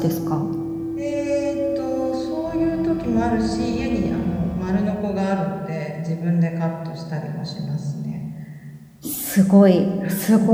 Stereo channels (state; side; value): identical; both; correlation 1.00